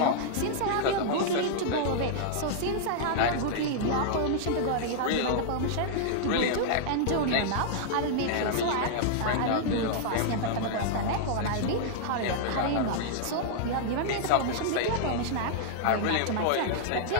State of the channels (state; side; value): different; both; correlation -0.01